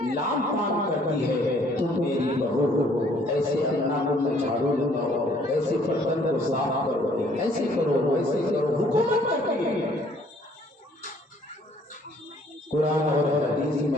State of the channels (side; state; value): both; normal; correlation 0.61